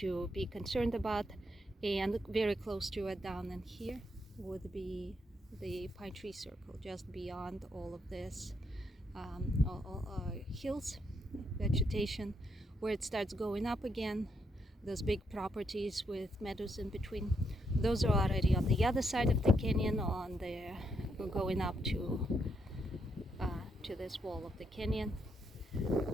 be concerned about. And very close to it down in here would be the Pine Tree Circle, just beyond all of this hills, vegetation, where it starts going up again. Those big properties with meadows in between, those are already on the other side of the canyon, on the going up to this wall of the canyon,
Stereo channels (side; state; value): both; normal; correlation 0.78